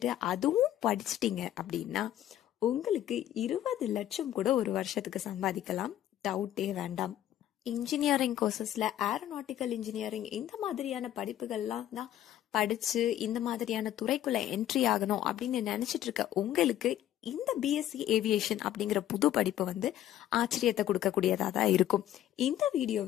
அதுவும் படிச்சிட்டீங்க அப்படின்னா உங்களுக்கு 20 லட்சம் கூட ஒரு வருஷத்துக்கு சம்பாதிக்கலாம். டவுட்டே வேண்டாம். இன்ஜினியரிங் கோர்சஸ்ல ஏரோநாட்டிக்கல் இன்ஜினியரிங் இந்த மாதிரியான படிப்புகள்லாம் தான் படிச்சு இந்த மாதிரியான துறைக்குள்ள என்ட்ரி ஆகணும் அப்படின்னு நினைச்சிட்டு இருக்க உங்களுக்கு இந்த பிஎஸ்சி ஏவியேஷன் அப்படிங்கிற புது படிப்பு ஆச்சரியத்தை கொடுக்கக்கூடியதா தான் இருக்கும். இந்த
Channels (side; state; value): right; quieter; 12.2 dB